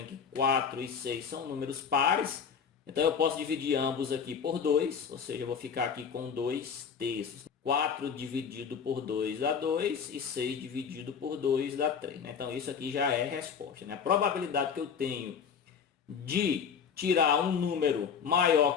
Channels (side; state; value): right; quieter; 6.8 dB